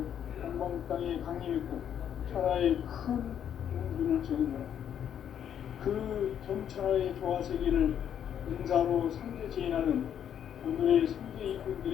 동방 땅에 강림했고 천하의 큰 운기를 정했노라. 그 정천하의 조화세계를 인사로 상제 제인하는 오늘의 상제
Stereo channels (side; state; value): right; quieter; 9.2 dB